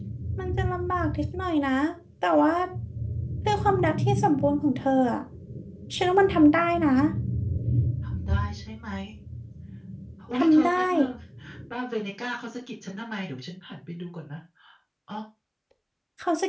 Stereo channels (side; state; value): both; identical; correlation 1.00